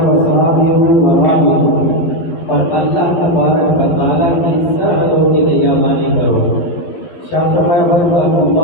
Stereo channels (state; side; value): late; right; 12 ms